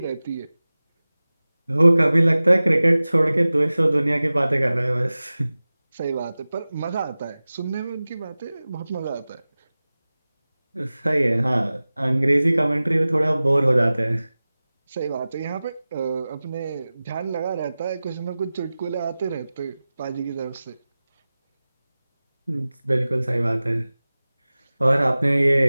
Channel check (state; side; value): inverted; both; correlation -0.97